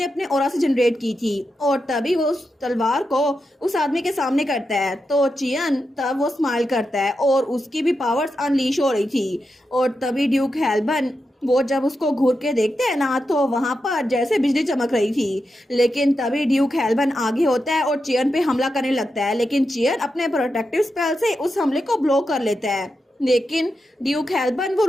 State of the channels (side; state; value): both; normal; correlation 0.88